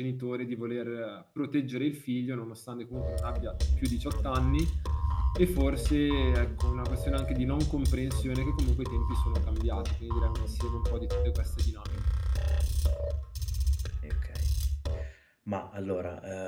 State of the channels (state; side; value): identical; both; correlation 1.00